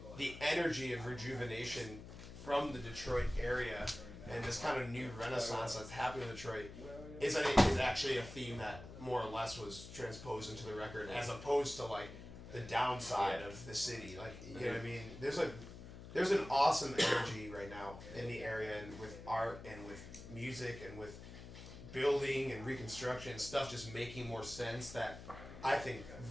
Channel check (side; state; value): left; noise; hum, 13 dB below the sound